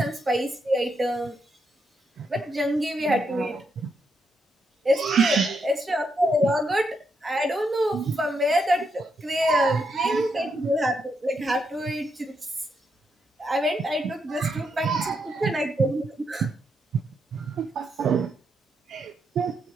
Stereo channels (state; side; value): normal; both; correlation 0.80